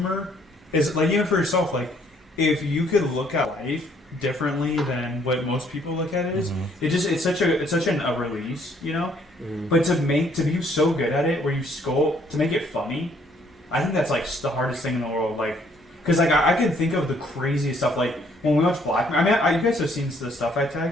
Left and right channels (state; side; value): normal; both; correlation 0.65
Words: is like even for yourself, like if you could look at life differently than what most people look at it is, it's such a release, you know. But to be so good at it, where you to make it funny, I think that's like the hardest thing in the world. Like, because like I can think of the craziest stuff. Like when we watch Black Mirror, I mean, you guys have seen the stuff I